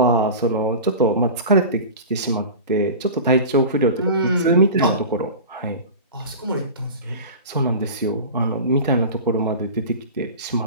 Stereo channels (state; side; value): inverted; both; correlation -0.32